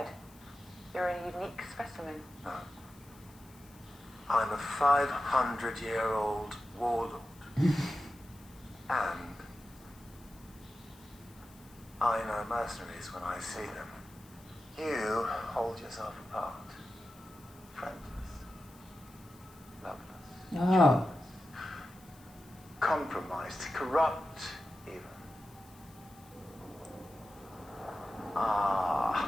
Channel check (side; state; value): left; noise; hiss, 25 dB below the sound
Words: You're a unique specimen. No. I'm a 500-year-old warlord. And I know mercenaries when I see them. You hold yourself apart. Friendless. Loveless. Oh. Compromised. Corrupt, even. Ah.